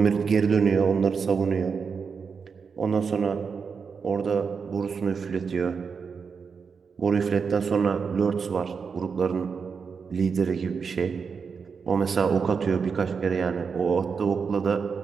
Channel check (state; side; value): quieter; left; 5.7 dB